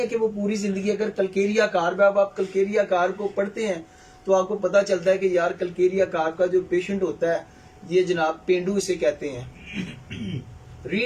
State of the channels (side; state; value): both; identical; correlation 1.00